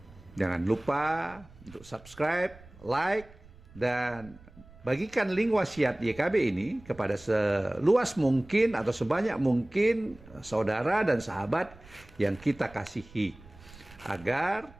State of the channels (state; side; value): noise; right; rumble, 22 dB below the sound